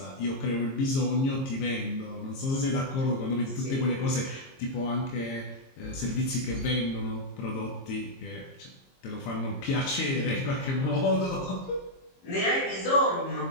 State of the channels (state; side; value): late; right; 22 ms